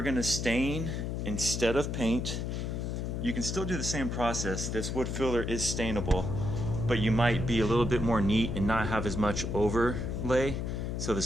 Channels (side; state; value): left; noise; hum, 3 dB below the sound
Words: going to stain instead of paint, you can still do the same process. This wood filler is stainable, but you might be a little bit more neat and not have as much overlay, so the